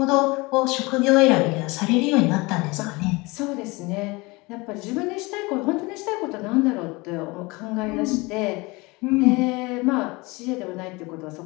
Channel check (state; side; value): quieter; right; 24.4 dB